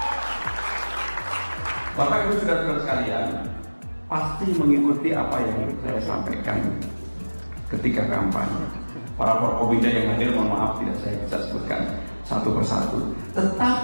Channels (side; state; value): both; inverted; correlation -1.00